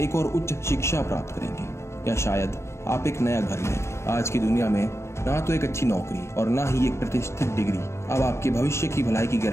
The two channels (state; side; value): late; right; 0.13 ms